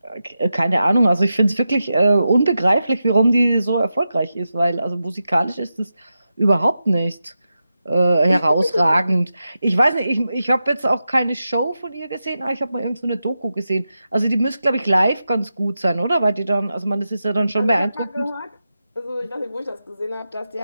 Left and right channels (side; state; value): both; inverted; correlation -0.90